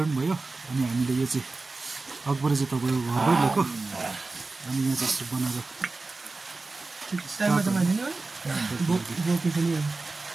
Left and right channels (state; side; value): quieter; left; 3.6 dB